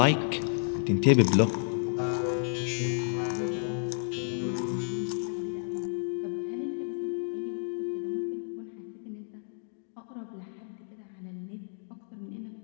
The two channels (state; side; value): silent; right; digital silence